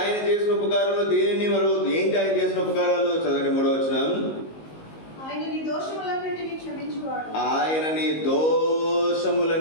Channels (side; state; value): right; late; 19 ms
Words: చేసిన ఉపకారంలో? దేనిని మరవద్దు. ఏంటి ఆయన చేసిన ఉపకారాలు? చదవండి 3వ వచనం. ఆయన నీ దోషములన్నిటినీ